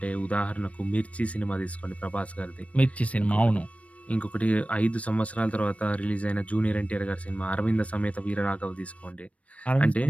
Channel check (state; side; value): late; right; 0.065 ms